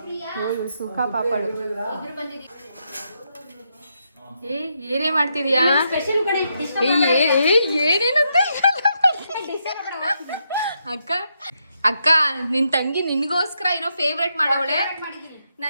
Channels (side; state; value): both; inverted; correlation -0.80